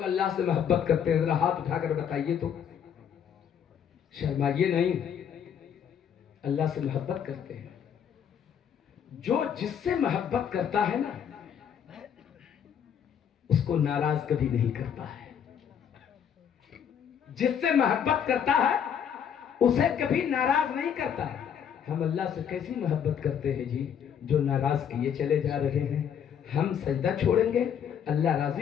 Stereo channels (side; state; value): right; quieter; 8.3 dB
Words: اللہ سے محبت کرتے ہیں؟ ذرا ہاتھ اٹھا کر بتائیے تو، شرمائیے نہیں، اللہ سے محبت کرتے ہیں۔ جو جس سے محبت کرتا ہے نا اس کو ناراض کبھی نہیں کرتا ہے، جس سے محبت کرتا ہے اسے کبھی ناراض نہیں کرتا ہے۔ ہم اللہ سے کیسی محبت کرتے ہیں جی، جو ناراض کیے چلے جا رہے ہیں۔ ہم سجدہ چھوڑیں گے اللہ